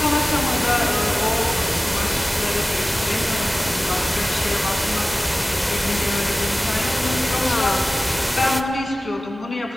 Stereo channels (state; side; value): normal; both; correlation 0.97